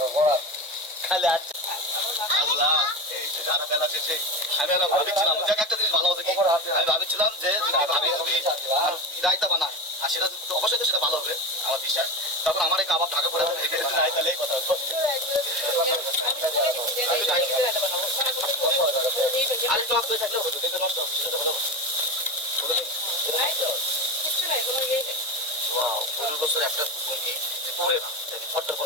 খালি আছে। আল্লাহ, এই যে জানা বেলা শেষে আমি ভাবছিলাম যে একটা জিনিস ভালো হবে, আমি ভাবছিলাম যে ভাবি রায়তা বানায় আর সেটা অবশ্যই তো সেটা ভালো হবে আমার বিশ্বাস। তখন আমার এই কাবাব ঢাকা পড়ে রায়তালেই কথা আর টক দই থাকলেও হতো, দেখতে নষ্ট সেটা ভালো হবে। 15 বছর একটা মুরগি যে পড়ে না, ফটটা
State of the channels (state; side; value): normal; both; correlation 0.21